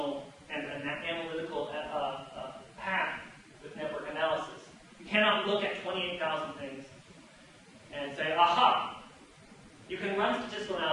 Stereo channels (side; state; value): both; identical; correlation 1.00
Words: and that analytical path with network analysis. You cannot look at 28,000 things and say, aha! You can run statistical